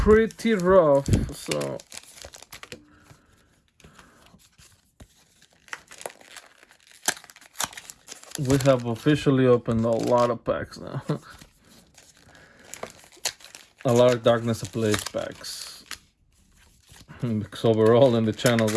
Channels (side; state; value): both; identical; correlation 1.00